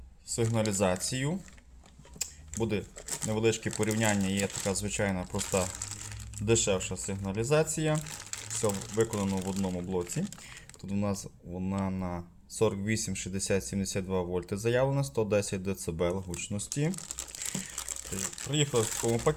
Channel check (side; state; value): both; identical; correlation 1.00